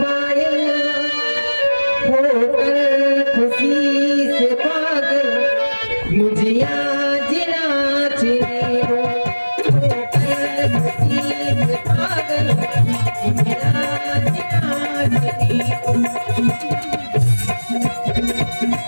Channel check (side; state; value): both; inverted; correlation -1.00